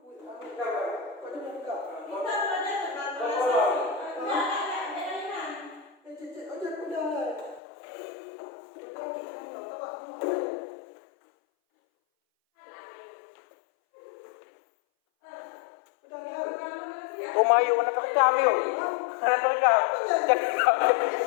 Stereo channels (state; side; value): drops out; right; at 7.6 s